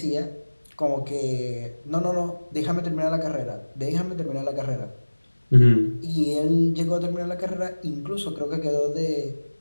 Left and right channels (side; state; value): both; inverted; correlation -1.00